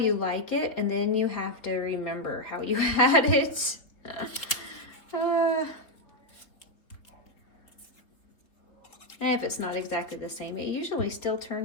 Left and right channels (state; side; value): late; right; 3.6 ms